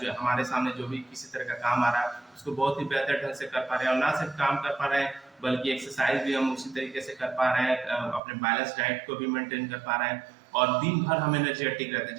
हमारे सामने जो भी किसी तरह का काम आ रहा है उसको बहुत ही बेहतर ढंग से कर पा रहे हैं, और ना सिर्फ काम कर पा रहे हैं बल्कि एक्सरसाइज भी हम उसी तरीके से कर पा रहे हैं, अपने बैलेंस डाइट को भी मेंटेन कर पा रहे हैं, और दिन भर हम एनर्जेटिक रहते हैं।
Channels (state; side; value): drops out; left; at 8.2 s